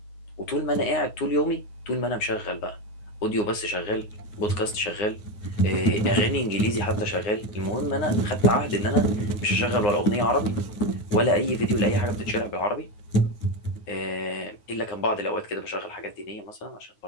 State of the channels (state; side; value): late; right; 9.6 ms